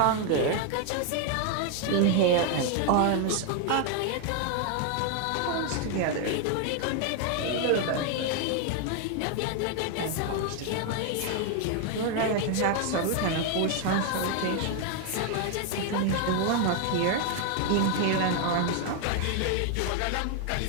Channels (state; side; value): different; both; correlation 0.01